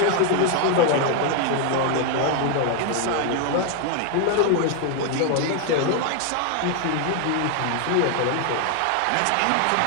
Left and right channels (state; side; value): different; both; correlation 0.00